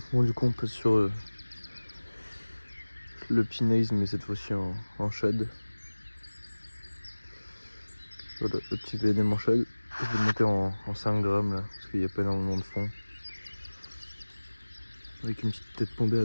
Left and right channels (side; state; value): both; inverted; correlation -1.00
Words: Bon du coup on passe sur le pinaise mais cette fois-ci en shad. Voilà, le petit VNM en shad. Je vais monter en 5 grammes là, parce qu'il n'y a pas énormément de fond. Avec une petite tête bombée à